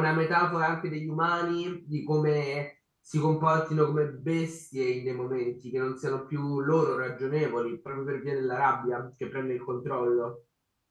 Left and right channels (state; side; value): identical; both; correlation 1.00